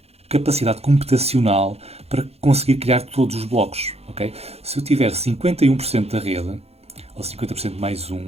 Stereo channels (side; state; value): left; late; 0.30 ms